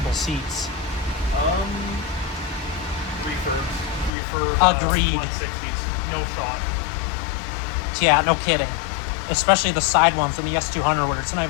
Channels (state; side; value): drops out; right; at 4.1 s